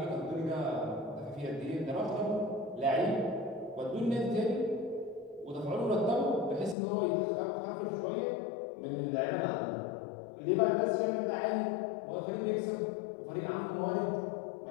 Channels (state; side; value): drops out; right; at 6.8 s